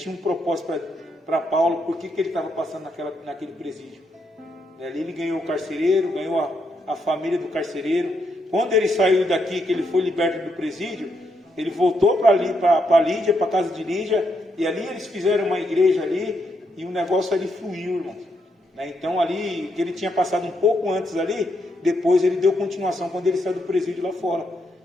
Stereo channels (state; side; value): normal; both; correlation 0.79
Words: um propósito para Paulo, por que ele estava passando naquele presídio. Ali ele ganhou o carcereiro, ganhou a família do carcereiro. Quando ele saiu daqui, que ele foi liberto do presídio, ele voltou para Lídia, para a casa de Lídia, e ali eles fizeram uma igreja ali, e o negócio ali fluiu, irmão. Então ali, que ele tinha passado um pouco antes ali, depois ele deu continuação quando ele saiu do presídio lá fora.